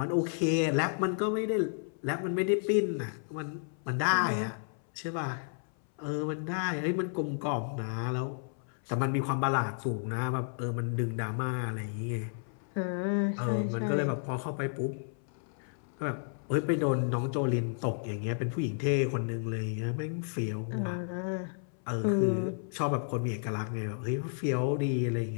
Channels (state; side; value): silent; right; 56 dB below the other